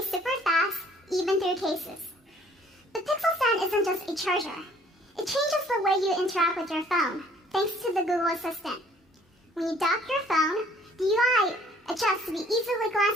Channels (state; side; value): normal; both; correlation 0.58